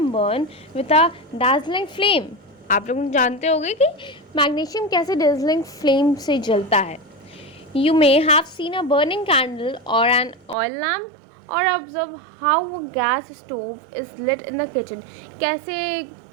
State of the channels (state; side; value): drops out; left; at 10.6 s